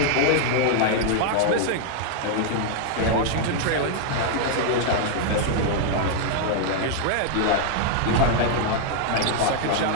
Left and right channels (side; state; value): both; different; correlation -0.01